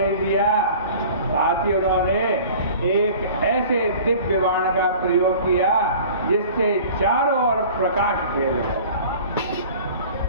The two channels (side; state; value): both; inverted; correlation -0.44